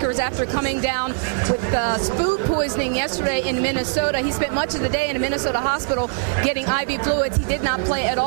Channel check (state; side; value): silent; left; digital silence